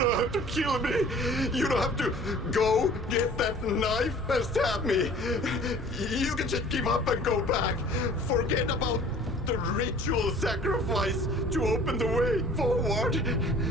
have to kill me. You don't have to go get that knife and stab me. You can just give up and go back. Forget about the ritual sacrifice to open the way forward.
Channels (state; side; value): normal; both; correlation 0.49